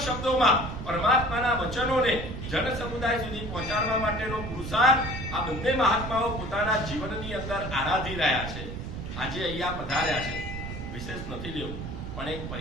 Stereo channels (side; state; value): right; noise; rumble, 7 dB below the sound